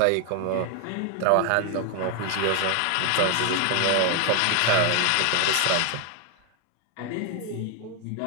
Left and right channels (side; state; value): both; different; correlation 0.01